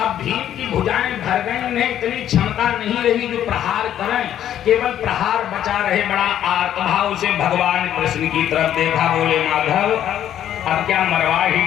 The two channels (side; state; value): right; quieter; 10.9 dB